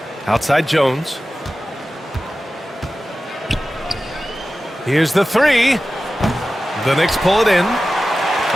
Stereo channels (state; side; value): normal; both; correlation 0.95